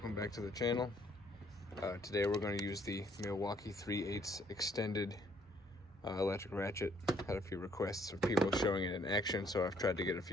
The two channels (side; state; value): both; normal; correlation 0.65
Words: back to the channel. Today we're going to use the Milwaukee 3/8 extended electric ratchet. Had a few requests of people showing it in action, so I've tried to get a